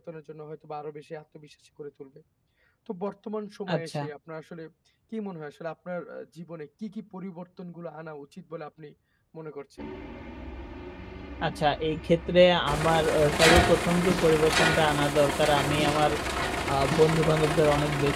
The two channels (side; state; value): both; identical; correlation 1.00